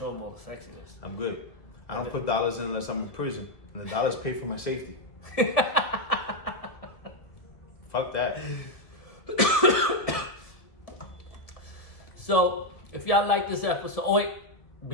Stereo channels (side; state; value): right; late; 1.7 ms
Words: him all the sexiness. I'm good. I don't put dollars in unless I'm in prison. And the dollars pay for my safety. Fuck that. So, if y'all like this episode, oh wait,